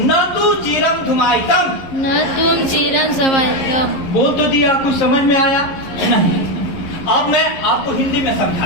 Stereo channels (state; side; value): late; right; 11 ms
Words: तु चिरम धुमायितम न तुम चिरं समाहितम्। बोल तो दिया, कुछ समझ में आया नहीं? अब मैं आपको हिंदी में समझा